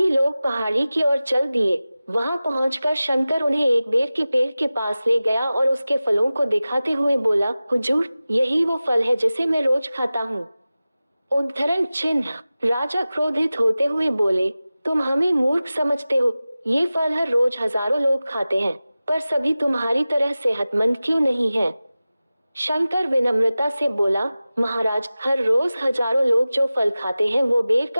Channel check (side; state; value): both; inverted; correlation -0.96